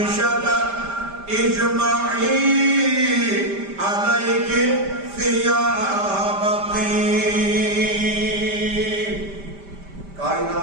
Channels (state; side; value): late; left; 5.1 ms